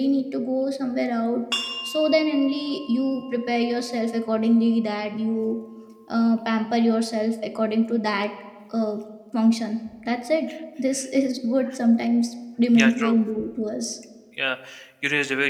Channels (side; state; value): both; identical; correlation 1.00